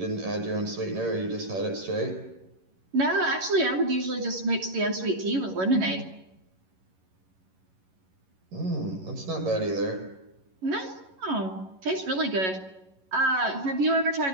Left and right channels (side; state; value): left; late; 11 ms